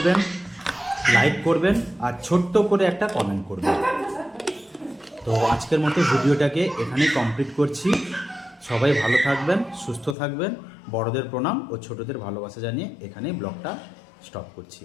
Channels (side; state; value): right; drops out; at 10.2 s